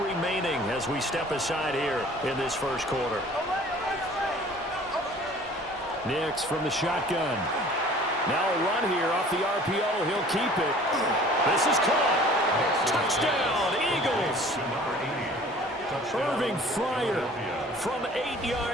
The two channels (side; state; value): both; normal; correlation 0.49